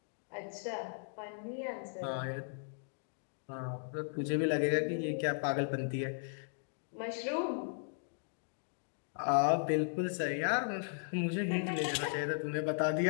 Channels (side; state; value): right; silent; digital silence